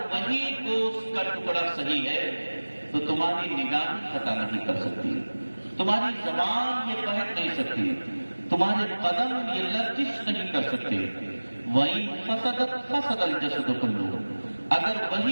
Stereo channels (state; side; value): inverted; both; correlation -1.00